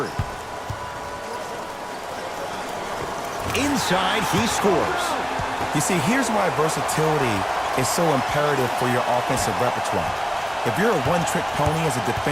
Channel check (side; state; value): both; identical; correlation 1.00